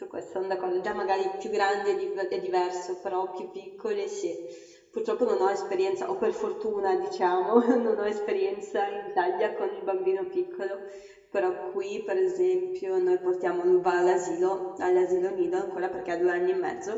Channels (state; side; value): identical; both; correlation 1.00